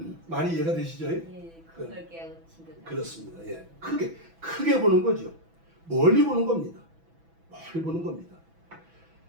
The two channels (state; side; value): late; left; 6.0 ms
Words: 많이 이해가 되시죠? 예, 그걸 깨우친 듯. 그렇습니다. 예, 크게 보는 거죠. 멀리 보는 겁니다. 멀리 보는 겁니다.